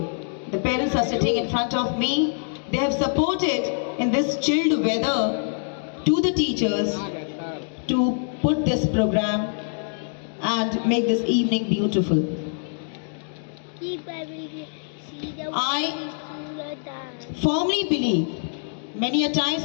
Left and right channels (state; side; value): silent; right; 62 dB below the other